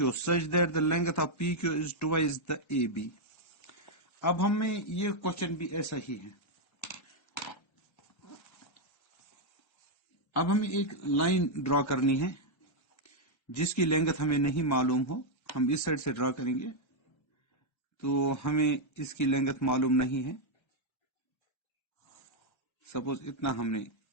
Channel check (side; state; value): right; late; 1.3 ms